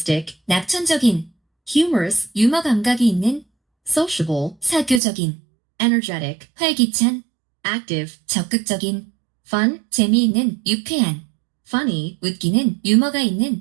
낙천적인, humorous, 유머 감각이 있는, sociable, 사교적인, energetic, 활기찬, active, 적극적인, fun, 재미있는, 유쾌한, funny, 웃기는, 유머가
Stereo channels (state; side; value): drops out; left; at 5.0 s